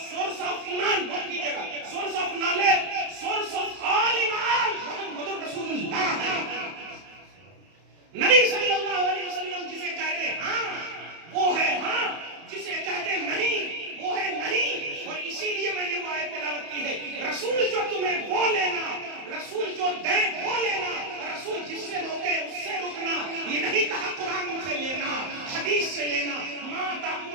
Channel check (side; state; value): left; late; 31 ms